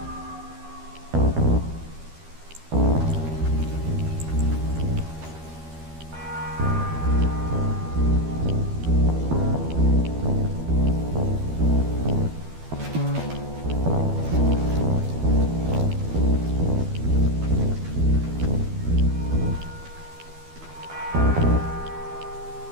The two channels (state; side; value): late; left; 12 ms